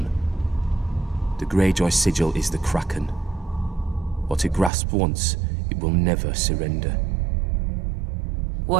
The Greyjoy sigil is the Kraken. What it grasped once, it will never surrender.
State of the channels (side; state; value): left; drops out; at 4.7 s